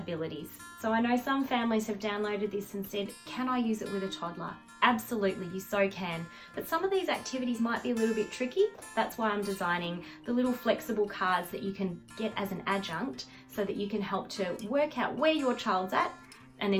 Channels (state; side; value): identical; both; correlation 1.00